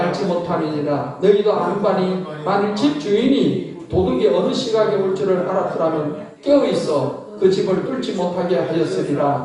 못함이니라. 너희도 아무간이 만일 집 주인이 도둑이 어느 시각에 올 줄을 알았더라면 깨어있어 그 집을 뚫지 못하게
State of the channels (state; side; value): identical; both; correlation 1.00